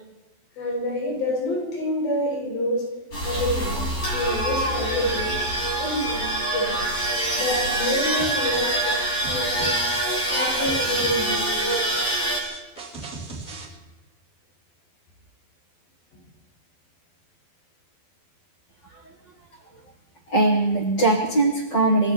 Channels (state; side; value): late; right; 12 ms